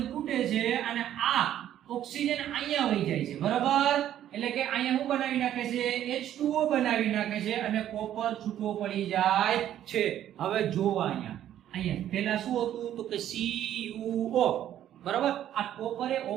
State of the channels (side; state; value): left; quieter; 11.4 dB